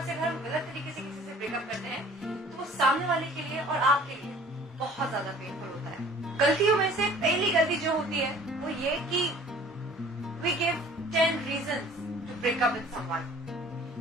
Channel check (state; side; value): normal; both; correlation 0.50